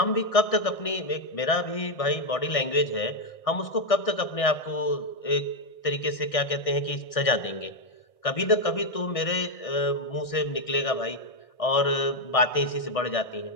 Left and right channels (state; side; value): late; right; 1.6 ms